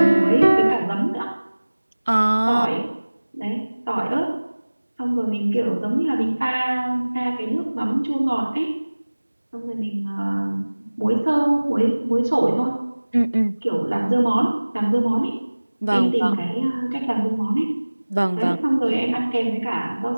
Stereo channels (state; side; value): inverted; both; correlation -1.00